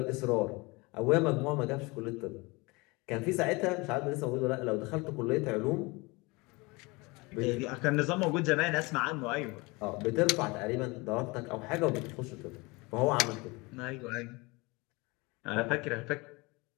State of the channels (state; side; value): quieter; right; 25.4 dB